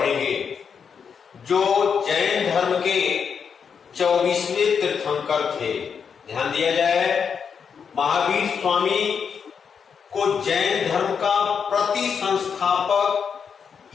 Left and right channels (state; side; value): quieter; right; 6.6 dB